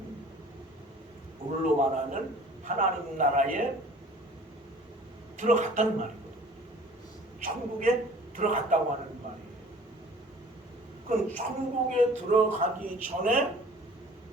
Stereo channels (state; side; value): normal; both; correlation 0.48